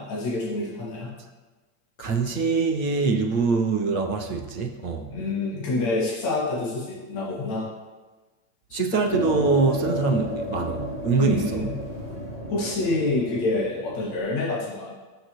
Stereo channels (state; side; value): late; right; 8.8 ms